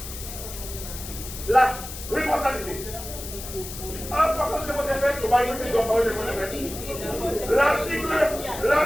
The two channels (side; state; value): left; noise; hiss, 10 dB below the sound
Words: la responsabilité. Pourquoi je vous ai fait? On va écouter donc parler de mon